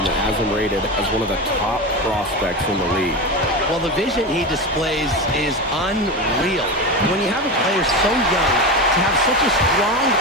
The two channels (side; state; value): both; normal; correlation 0.21